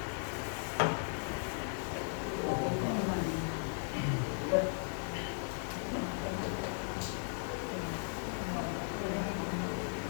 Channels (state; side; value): silent; right; 53 dB below the other